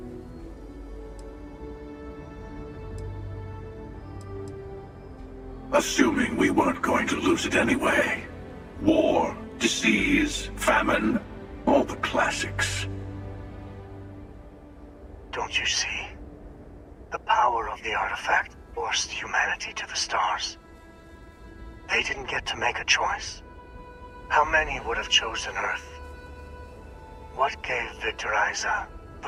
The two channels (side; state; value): both; identical; correlation 1.00